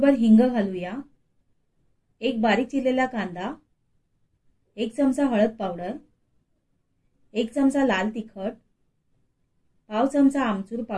हिंग घालूया। 1 बारीक चिरलेला कांदा, 1 चमचा हळद पावडर, 1 चमचा लाल तिखट, पाव चमचा आमचूर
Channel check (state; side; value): identical; both; correlation 1.00